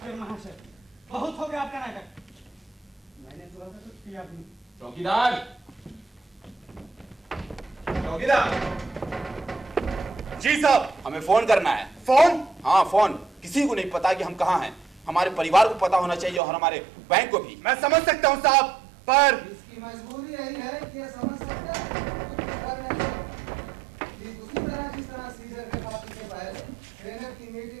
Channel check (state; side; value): drops out; left; at 16.4 s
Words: महाशय, बहुत हो गया आपका नाटक। मैंने थोड़ा सा कुछ किया भी। चौकीदार, चौकीदार। जी साहब, हमें फोन करना है। फोन? हाँ फोन। किसी को नहीं पता कि हम कहाँ हैं। हमारे परिवार को पता होना चाहिए और हमारे बैंक को भी। मैं समझ सकता हूँ साहब, पर इसकी मजबूरी यही है कि ये समझ सकता है कुछ कर नहीं सकता। ठीक उसी तरह जिस तरह सीजर ने पार्टी से पहले सेनेट की